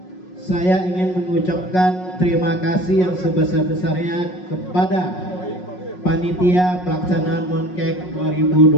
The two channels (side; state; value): right; late; 5.5 ms